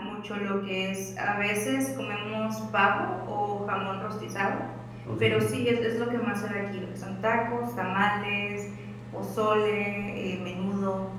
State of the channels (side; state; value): both; identical; correlation 1.00